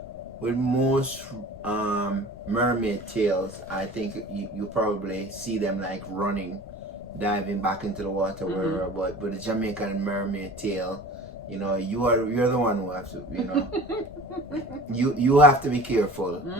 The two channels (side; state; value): left; noise; rumble, 18 dB below the sound